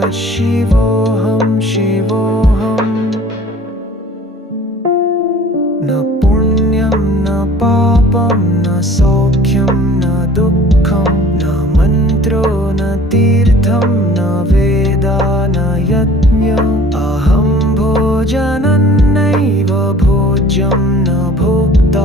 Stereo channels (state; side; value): normal; both; correlation 0.49